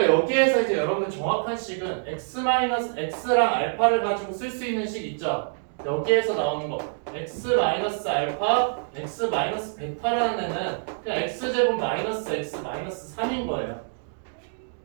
여기에서 이제 여러분들 정확한 식은 x 마이너스 x랑 알파를 가지고 쓸 수 있는 식 있죠. 여기에서 나오는 거 x 마이너스 알파, x 마이너스 베타라는 애는 그냥 x 제곱 마이너스 x 마이너스 3인 거예요.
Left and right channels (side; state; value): left; silent; digital silence